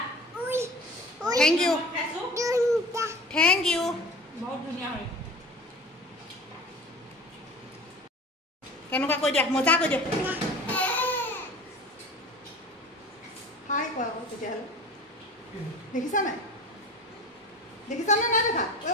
থেংক ইউ থেংক ইউ বহুত ধুনীয়া হয় কেনেকুৱা কৈ দিয়া মজা কৈ দিয়া হাই কোৱা আকৌ তেতিয়াহ'লে দেখিছা নাই দেখিছানে নাই দেখা ঐ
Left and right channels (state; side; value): normal; both; correlation 0.39